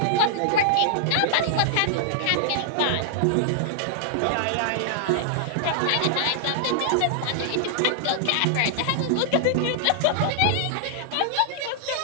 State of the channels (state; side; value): different; both; correlation -0.01